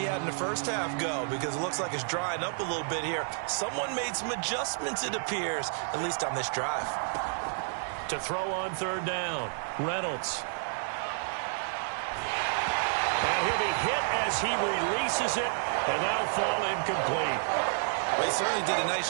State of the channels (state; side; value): silent; left; 58 dB below the other